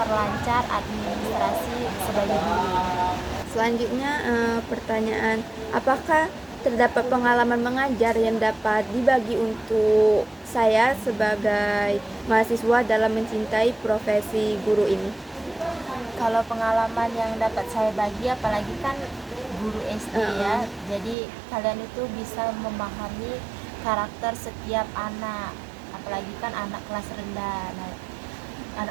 administrasi sebagai guru. Selanjutnya pertanyaan, apakah terdapat pengalaman mengajar yang dapat dibagi untuk saya sebagai mahasiswa dalam mencintai profesi guru ini? Kalau pengalaman yang dapat saya bagi, apalagi kan guru SD ya, jadi kalian itu bisa memahami karakter setiap anak, apalagi kan anak kelas rendah. Nah,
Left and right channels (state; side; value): drops out; left; at 21.2 s